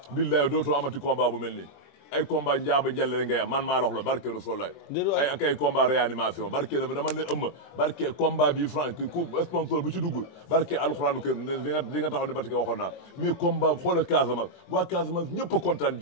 billahi dootoo amati combat bu mel nii ay combat njaaba njale rek ngay am man maa la wax la barke Rasulullah ay ak ay combat réanimation barke dama ne ëmma barke combat bi franc ku sponsor bu ci dugg barke alxuraanu kër di nga taxaw ne Batika waxoon naa mais combat xoolal Casamance waa Casamance ñëpp a kontaan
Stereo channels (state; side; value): late; right; 23 ms